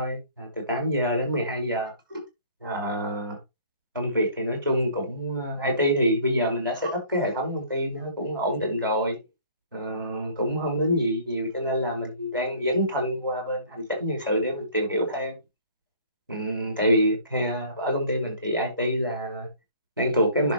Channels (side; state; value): both; inverted; correlation -0.52